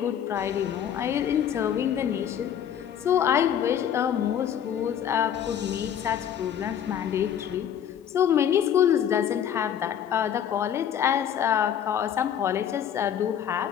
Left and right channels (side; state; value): right; quieter; 9.3 dB